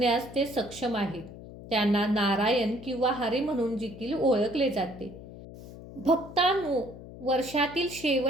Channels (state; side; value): noise; left; hum, 15 dB below the sound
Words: ते सक्षम आहेत. त्यांना नारायण किंवा हरी म्हणून देखील ओळखले जाते. भक्तांनो, वर्षातील